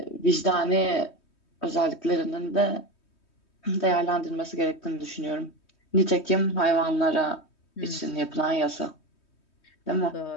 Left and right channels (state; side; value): late; right; 3.2 ms